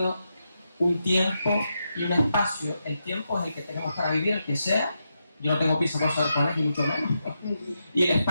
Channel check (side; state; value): both; inverted; correlation -0.85